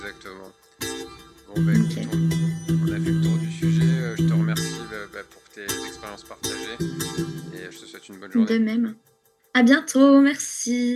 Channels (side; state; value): both; identical; correlation 1.00